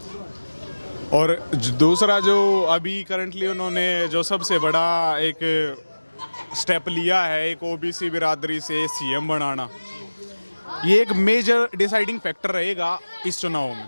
और दूसरा जो अभी करंटली उन्होंने जो सबसे बड़ा एक स्टेप लिया है, एक ओबीसी बिरादरी से सीएम बनाना, ये एक मेजर डिसाइडिंग फैक्टर रहेगा इस चुनाव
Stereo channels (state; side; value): inverted; both; correlation -1.00